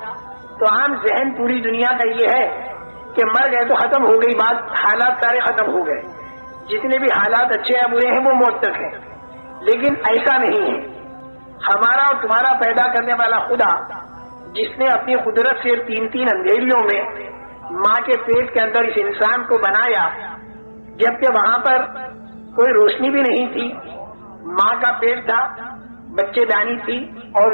تو عام ذہن پوری دنیا کا یہ ہے کہ مر گئے تو ختم ہو گئی بات، حالات سارے ختم ہو گئے، جتنے بھی حالات اچھے یا برے ہیں وہ موت تک ہیں۔ لیکن ایسا نہیں ہے۔ ہمارا اور تمہارا پیدا کرنے والا خدا، جس نے اپنی قدرت سے تین اندھیریوں میں ماں کے پیٹ کے اندر اس انسان کو بنایا، جبکہ وہاں پر کوئی روشنی بھی نہیں تھی، ماں کا پیٹ تھا، بچے دانی تھی اور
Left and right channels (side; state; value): both; inverted; correlation -1.00